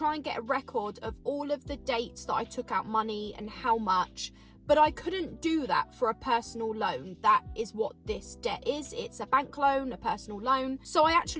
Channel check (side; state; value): both; identical; correlation 1.00